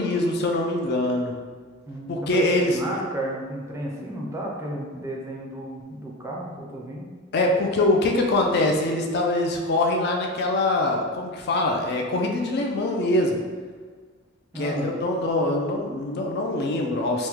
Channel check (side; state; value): both; normal; correlation 0.23